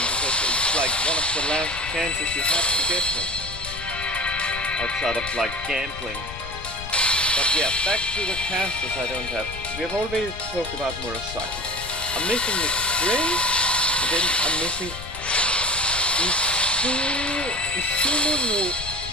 because it's like one of the last chances you have to get her. Outside of like gambling. But yeah, back to the casters I don't have. We have already talked about Murasaki. I'm missing Miss Crane, and then I'm missing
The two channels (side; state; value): left; noise; rumble, 12 dB below the sound